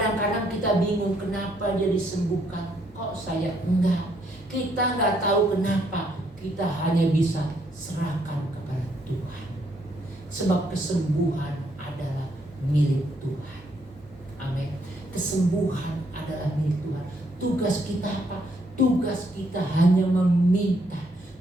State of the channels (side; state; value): both; normal; correlation 0.72